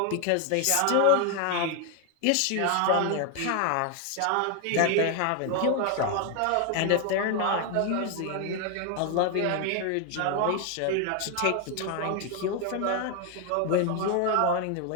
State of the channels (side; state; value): both; different; correlation 0.00